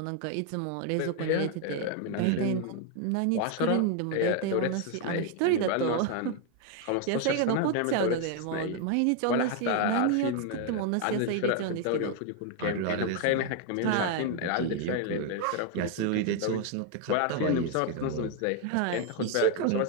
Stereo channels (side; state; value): both; different; correlation 0.01